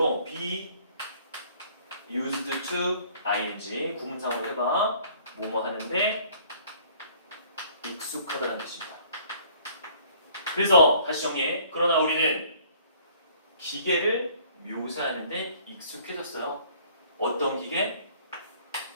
be used to ing 구문상으로 해봐. 뭐뭐 하는데 익숙하다는 뜻입니다. 그래서 다시 정리해. 그러나 우리는 기계를 묘사하는데 익숙해졌어요. 어떤 기계?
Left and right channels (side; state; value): both; inverted; correlation -0.56